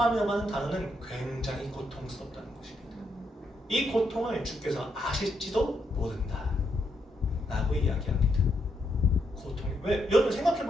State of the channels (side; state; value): both; normal; correlation 0.79